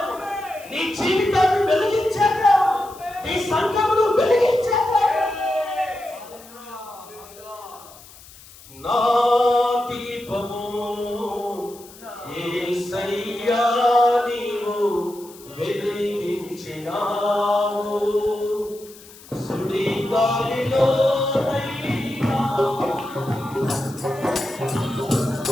నీ జీవితాన్ని వెలిగించే దేవుడు, నీ సంఘమును వెలిగించే దేవుడు. నా దీపము యేసయ్యా నీవు వెలిగించినావు, సుడి గాలిలో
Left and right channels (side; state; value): left; noise; hiss, 21 dB below the sound